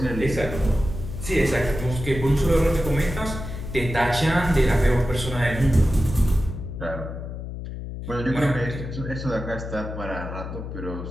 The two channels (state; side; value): noise; left; hum, 8 dB below the sound